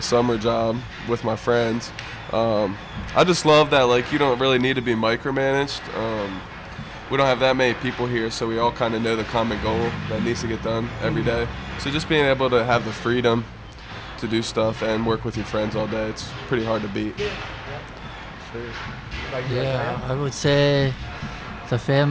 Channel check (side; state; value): both; identical; correlation 1.00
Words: summer job with my friends. I just love that like you don't really need to be micromanaged. We don't have that many people here, so we all kind of know the common goal that needs to get done every day. So just being able to have the freedom to do stuff and work with your friends all day, it's pretty hard to beat. Yeah, I would say the